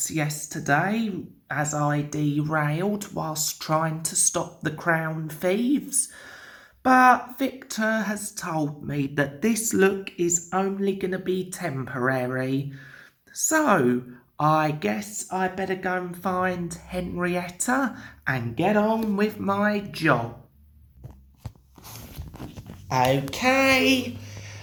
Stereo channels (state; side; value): identical; both; correlation 1.00